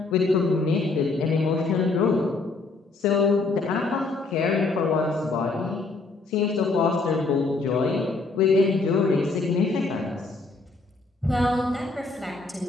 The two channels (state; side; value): quieter; right; 3.7 dB